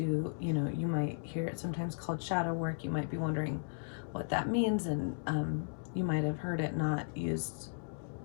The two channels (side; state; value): right; silent; digital silence